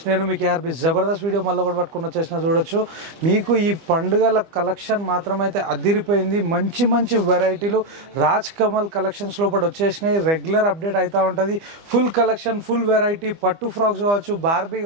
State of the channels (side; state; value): left; late; 25 ms